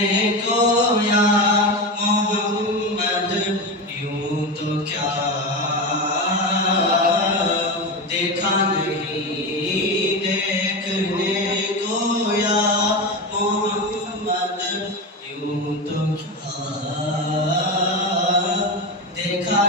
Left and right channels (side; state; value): both; normal; correlation 0.19